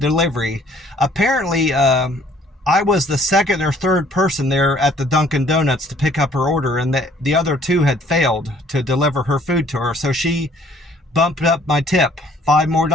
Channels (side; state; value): both; normal; correlation 0.59